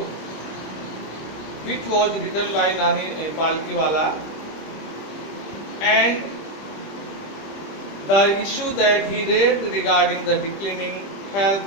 which was written by Nani Palkiwala, and the issue that he raised regarding the declining health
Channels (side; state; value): right; late; 25 ms